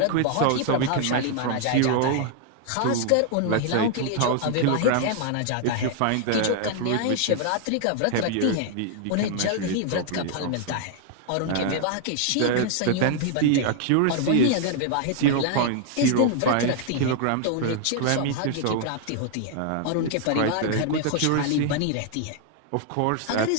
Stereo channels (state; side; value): different; both; correlation 0.00